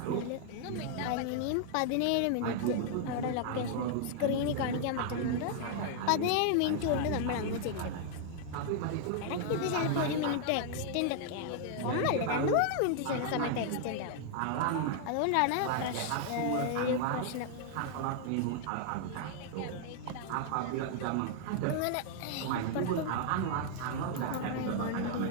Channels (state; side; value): different; both; correlation 0.00